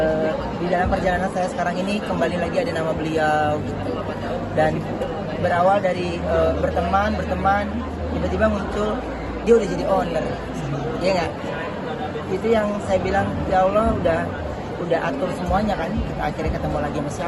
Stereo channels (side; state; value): both; identical; correlation 1.00